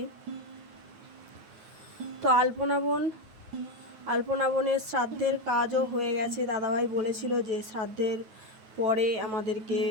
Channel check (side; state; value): left; late; 9.3 ms